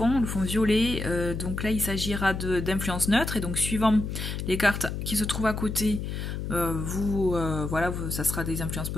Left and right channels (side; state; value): left; noise; hum, 4 dB below the sound